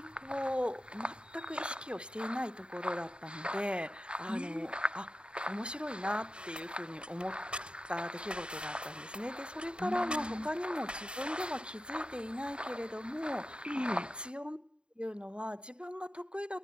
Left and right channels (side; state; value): left; late; 0.052 ms